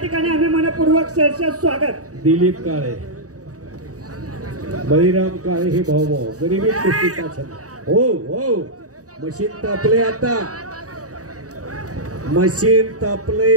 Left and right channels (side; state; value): left; late; 0.66 ms